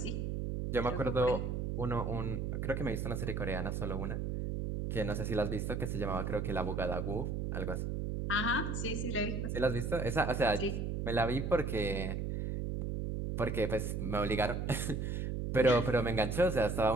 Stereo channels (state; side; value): noise; right; hum, 2 dB below the sound